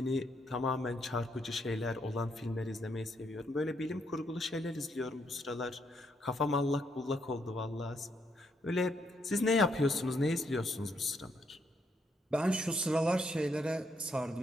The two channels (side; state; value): both; normal; correlation 0.75